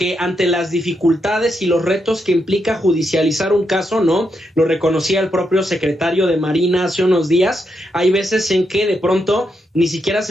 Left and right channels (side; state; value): both; normal; correlation 0.82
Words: ante las dificultades y los retos que implica judicializar un caso, ¿no? Lo reconocía el propio secretario de Marina hace unos días, hay veces en que de pronto ni siquiera